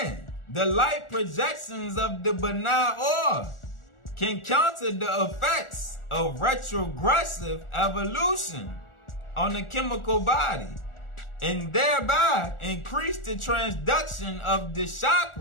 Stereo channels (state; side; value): late; right; 1.4 ms